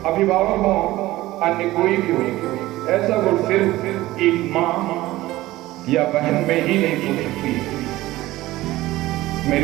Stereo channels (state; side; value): quieter; left; 17.2 dB